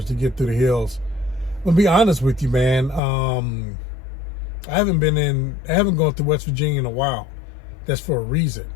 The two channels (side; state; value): right; drops out; at 3.0 s